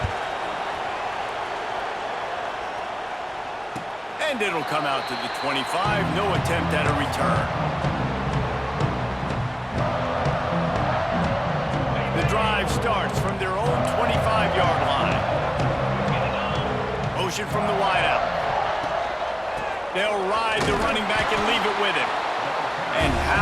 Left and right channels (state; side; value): identical; both; correlation 1.00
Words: And it'll come out to the 25. No attempt at a return. The drive starts from their own 25-yard line. Motion from the wideout. They'll ride the running back and leave it with him. And